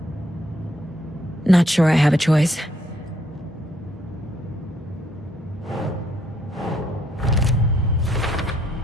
Not sure I have a choice.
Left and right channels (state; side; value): normal; both; correlation 0.70